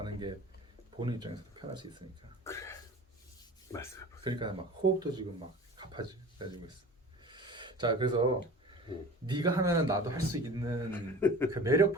게 보는 입장에서도 편할 수 있으니까. 말씀해. 그러니까 막 호흡도 지금 막 가파지고 있어. 자, 그래서 네가 하면은 나도 할 수 있는 그 매력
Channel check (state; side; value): normal; both; correlation 0.39